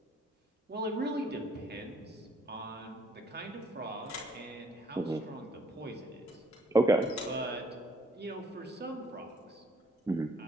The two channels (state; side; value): normal; both; correlation 0.64